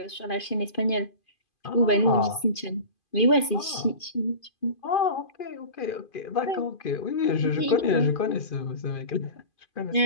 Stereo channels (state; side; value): late; right; 2.5 ms